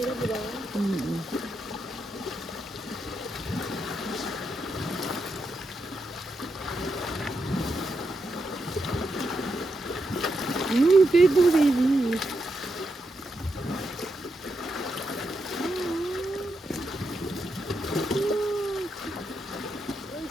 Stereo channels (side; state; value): both; normal; correlation 0.84